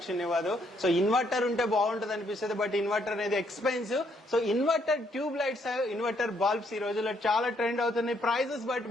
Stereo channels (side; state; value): both; normal; correlation 0.71